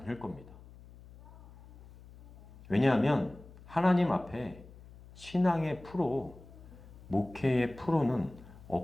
겁니다. 왜냐하면 하나님 앞에 신앙의 프로, 목회의 프로는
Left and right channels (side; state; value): left; noise; hum, 20 dB below the sound